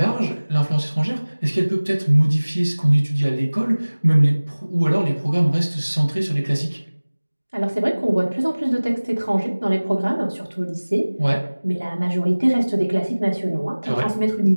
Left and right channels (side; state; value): both; inverted; correlation -1.00